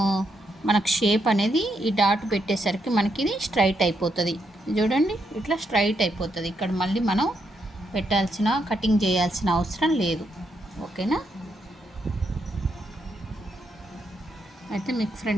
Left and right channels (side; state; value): both; normal; correlation 0.79